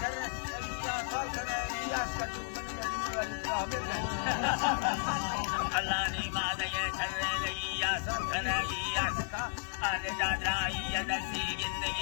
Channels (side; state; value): right; silent; digital silence